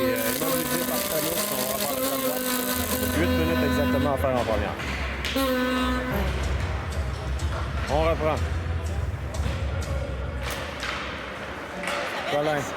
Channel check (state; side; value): identical; both; correlation 1.00